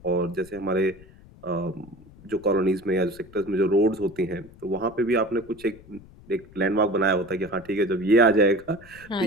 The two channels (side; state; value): left; noise; rumble, 22 dB below the sound